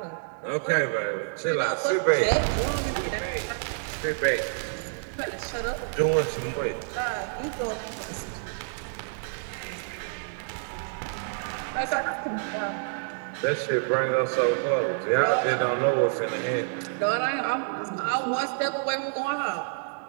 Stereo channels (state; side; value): silent; left; digital silence